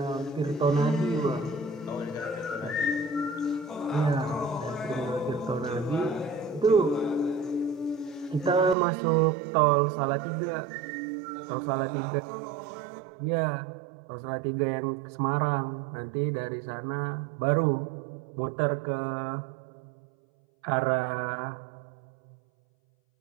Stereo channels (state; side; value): drops out; left; at 8.8 s